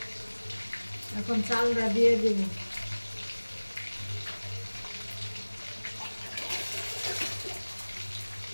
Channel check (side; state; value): both; inverted; correlation -1.00